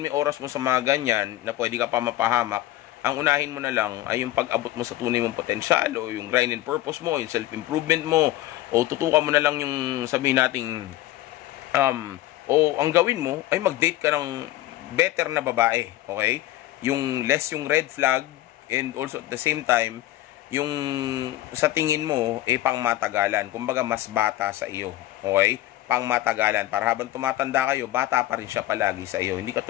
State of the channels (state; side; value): quieter; right; 15.3 dB